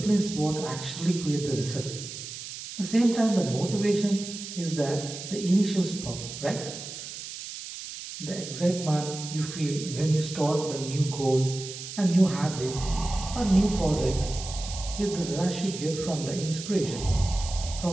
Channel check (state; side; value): noise; right; hiss, 10 dB below the sound